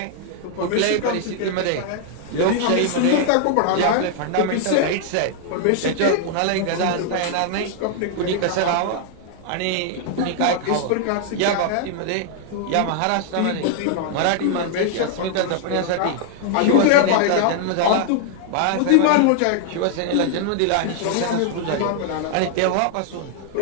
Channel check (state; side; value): different; both; correlation 0.00